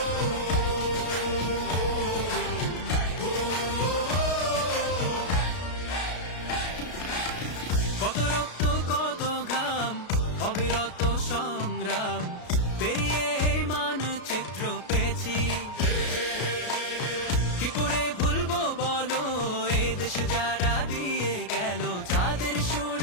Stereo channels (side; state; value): right; late; 33 ms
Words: কত রক্ত কত ঘাম, অবিরত সংগ্রাম পেরিয়ে এই মানচিত্র পেয়েছি। কি করে ভুলবো বলো এ দেশ যারা দিয়ে গেল, যাদের